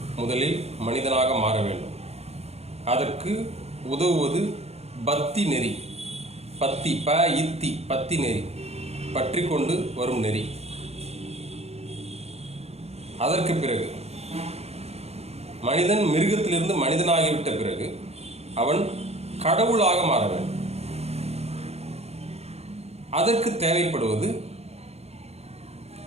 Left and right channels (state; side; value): late; left; 0.30 ms